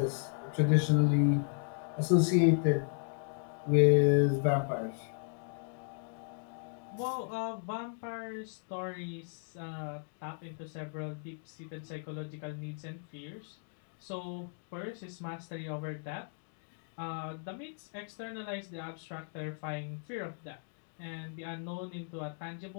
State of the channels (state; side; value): silent; right; digital silence